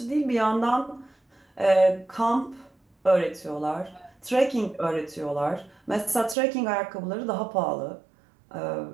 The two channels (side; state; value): left; drops out; at 6.4 s